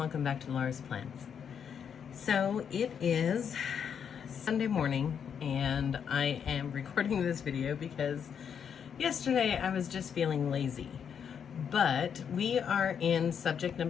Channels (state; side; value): quieter; right; 7.6 dB